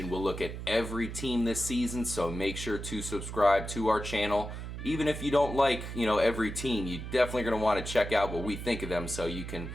we'll look at every team this season, so make sure to subscribe to our channel. Even if you don't like, every team, you're definitely going to want to check out what we think of them so you can,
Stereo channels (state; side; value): noise; right; hum, 8 dB below the sound